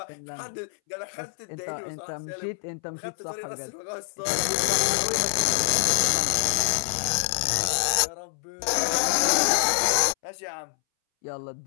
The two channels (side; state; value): right; silent; 61 dB below the other